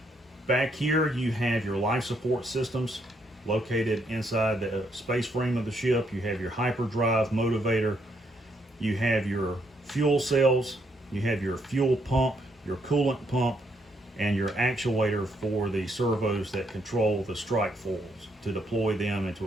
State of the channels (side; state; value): both; normal; correlation 0.74